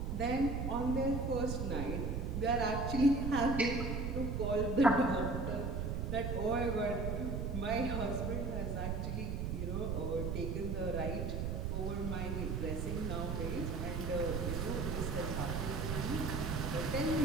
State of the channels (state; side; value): noise; right; rumble, 1 dB below the sound